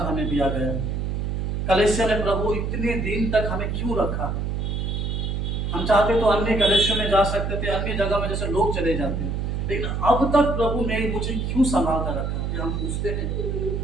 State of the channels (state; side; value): noise; right; hum, 1 dB below the sound